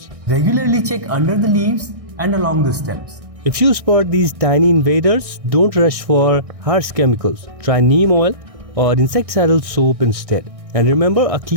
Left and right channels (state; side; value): late; left; 1.6 ms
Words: Regularly check under the leaves and along the stems. If you spot these tiny invaders, don't rush for harsh chemicals. Try neem oil or insecticidal soap instead. And remember, a